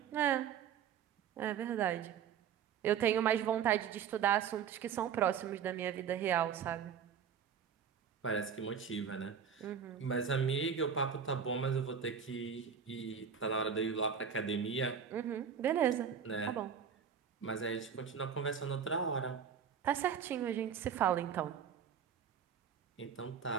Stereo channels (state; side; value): quieter; left; 7.5 dB